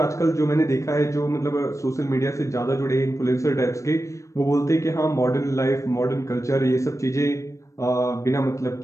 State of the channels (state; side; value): late; right; 0.15 ms